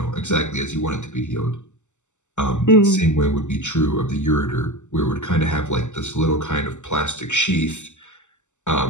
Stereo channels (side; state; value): right; late; 0.84 ms